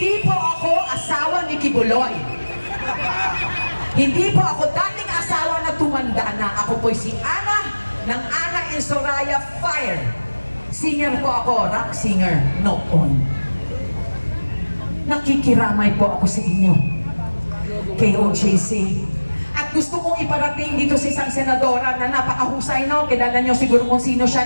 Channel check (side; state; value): both; inverted; correlation -1.00